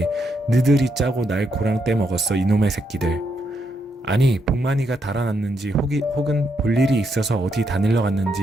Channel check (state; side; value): normal; both; correlation 0.79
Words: 너들이 짜고 날 고랑 떼먹었어 이놈의 새끼들. 아니 복만이가 달아났는지 혹은 볼 일이 있어서 어디 다닐러 갔는지